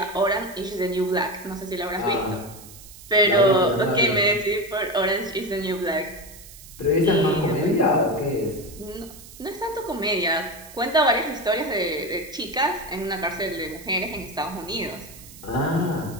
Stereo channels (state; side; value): noise; right; hiss, 18 dB below the sound